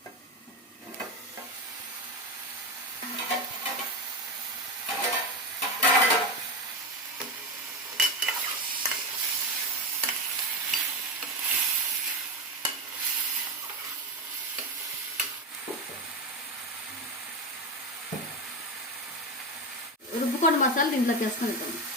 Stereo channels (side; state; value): both; normal; correlation 0.16